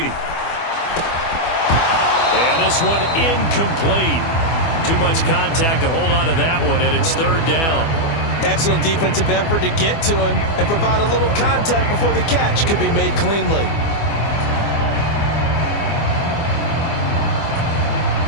And this one incomplete. Too much contact to hold on to that one, and it's 3rd down. Excellent defensive effort to get to him and provide a little contact before the catch could be made cleanly.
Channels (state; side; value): late; right; 24 ms